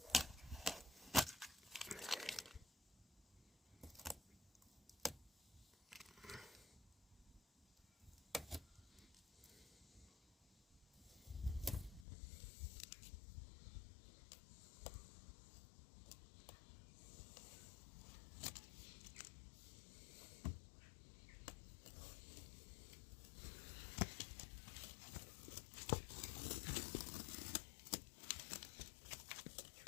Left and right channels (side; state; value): right; drops out; at 12.1 s